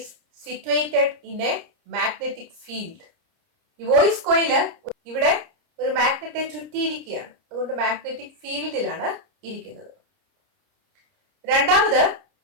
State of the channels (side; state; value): left; late; 30 ms